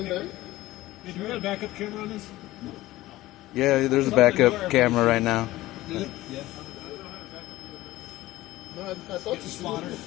time? Hey, do we have a backup camera on this? No. Yeah, there's a backup camera right now. Yeah. No, I thought it's spotter.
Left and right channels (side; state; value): right; quieter; 17.1 dB